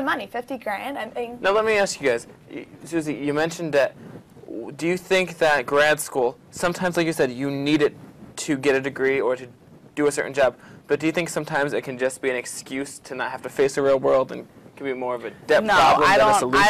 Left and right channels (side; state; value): both; identical; correlation 1.00